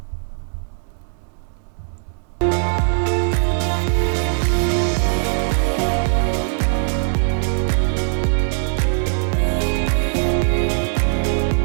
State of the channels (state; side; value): silent; left; 66 dB below the other